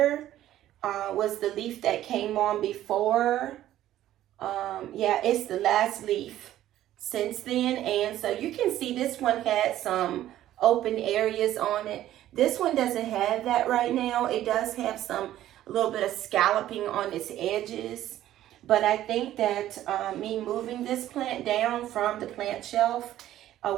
was the leaf that came on before. Yeah, it's the last leaf since then. And so you can see this one had some open areas on it. This one doesn't have that right now. It does have a little bit of scalloping on its edges. But I think that me moving this plant down from the plant shelf,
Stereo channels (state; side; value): quieter; left; 13.1 dB